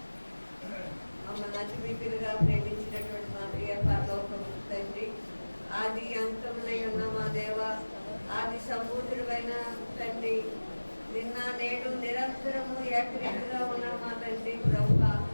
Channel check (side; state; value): both; inverted; correlation -1.00